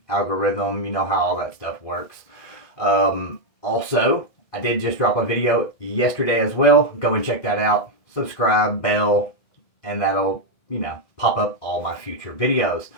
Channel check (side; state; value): right; late; 2.0 ms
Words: Algorithm, you know how all that stuff works. Also, I did just drop a video yesterday as well. Go and check that out. Subscribe, bell, and that'll, pop up all my future videos.